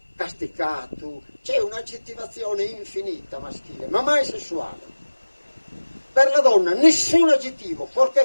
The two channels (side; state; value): both; inverted; correlation -1.00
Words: casticato? C'è un'aggettivazione infinita maschile, ma mai sessuale. Per la donna nessun aggettivo,